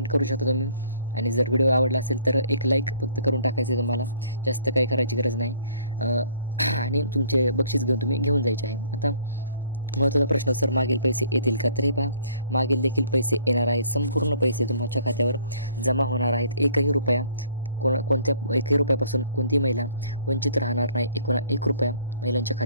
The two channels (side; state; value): both; inverted; correlation -0.57